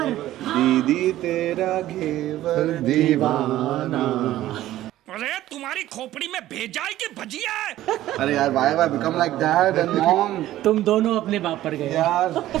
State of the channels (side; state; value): left; quieter; 14.4 dB